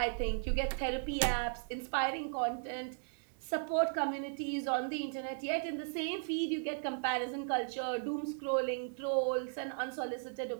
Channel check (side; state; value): left; silent; digital silence